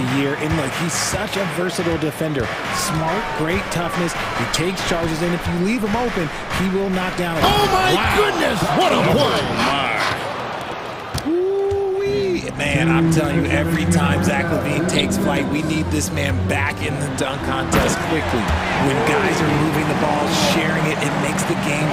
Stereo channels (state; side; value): identical; both; correlation 1.00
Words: year, and look, he's such a versatile defender. Smart, great toughness. He takes charges, and if you leave him open, he will knock down. Oh my goodness! What a play! Man, I'm telling you, every time Zach Levine takes flight, we need this man back in the dunk contest quickly. When guys are moving the ball, sharing it, it makes the